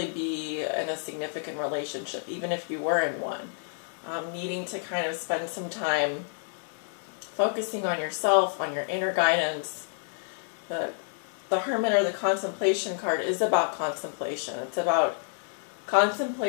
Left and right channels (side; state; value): right; silent; digital silence